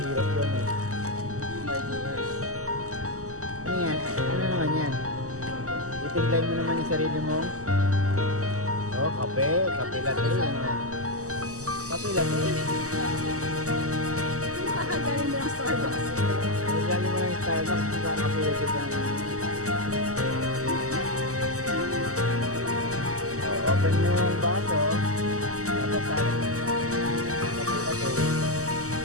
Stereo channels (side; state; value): left; late; 0.66 ms